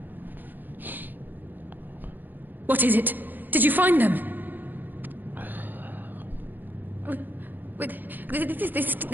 What is it? Did you find them?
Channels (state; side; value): late; left; 0.088 ms